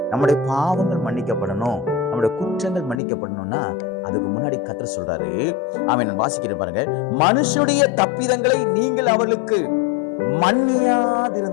நம்முடைய பாவங்கள் மன்னிக்கப்படணும், நம்முடைய குற்றங்கள் மன்னிக்கப்படணும்னா அதுக்கு முன்னாடி கர்த்தர் சொல்றாரு, நான் வாசிக்கிறேன் பாருங்க, மனுஷனுடைய தப்பிதங்களை நீங்கள் அவர்களுக்கு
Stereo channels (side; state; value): right; drops out; at 3.0 s